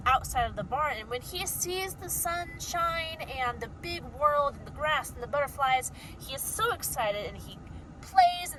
outside of the barn, and when he sees the sunshine and the big world and the grass and the butterflies, he is so excited, and he plays in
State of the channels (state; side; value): identical; both; correlation 1.00